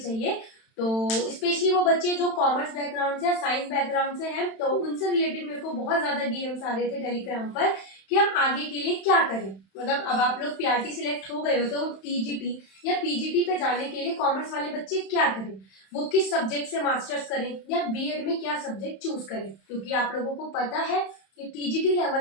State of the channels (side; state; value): right; late; 31 ms